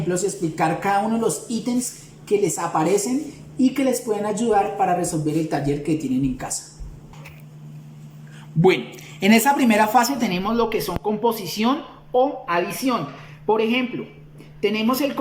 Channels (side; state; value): both; identical; correlation 1.00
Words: y explicar cada uno de los ítems que les aparecen y que les pueden ayudar para resolver el taller que tienen en casa. Bueno, en esa primera fase tenemos lo que son composición o adición. Por ejemplo, tenemos el